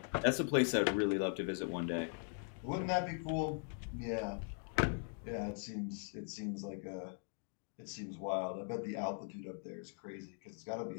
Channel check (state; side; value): silent; right; 51 dB below the other